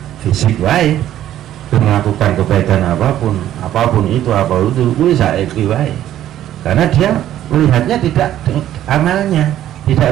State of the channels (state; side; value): quieter; left; 12.2 dB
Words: fisik wae, melakukan kebaikan apapun itu kuwi saiki wae. Karena dia melihatnya tidak amalnya,